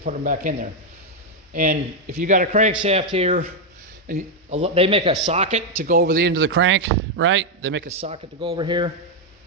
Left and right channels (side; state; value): both; normal; correlation 0.02